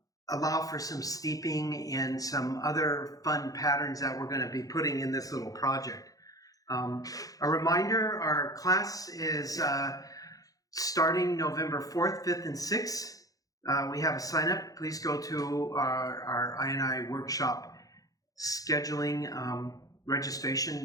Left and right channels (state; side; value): late; right; 0.17 ms